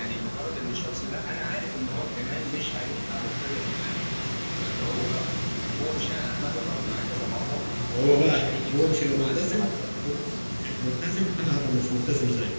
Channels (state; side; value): inverted; both; correlation -1.00